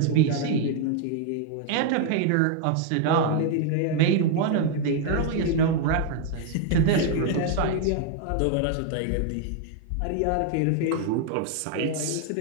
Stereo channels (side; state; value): both; different; correlation 0.00